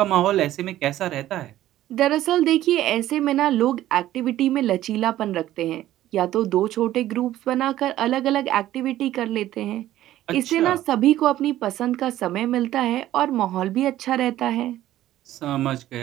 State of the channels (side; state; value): left; quieter; 13.8 dB